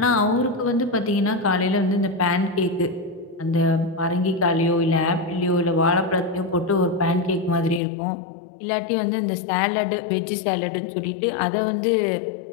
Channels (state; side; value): drops out; right; at 7.8 s